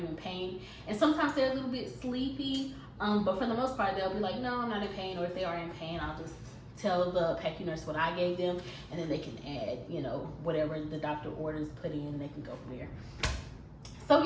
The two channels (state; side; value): identical; both; correlation 1.00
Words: in pain? And sometimes they're a little bit sleepy, but for the most part they'll be like, no, I'm not in pain. Or if they are in pain, I'll just tell the PACU nurse what I gave them, and then they can add, you know, whatever the doctor orders put in, they can go from there. So